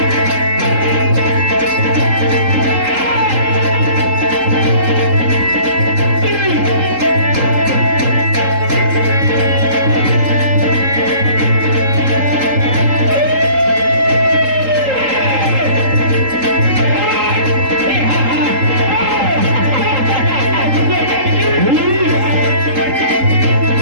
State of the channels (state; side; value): late; left; 3.8 ms